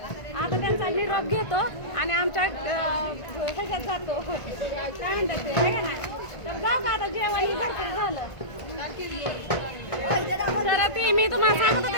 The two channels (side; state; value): right; late; 1.5 ms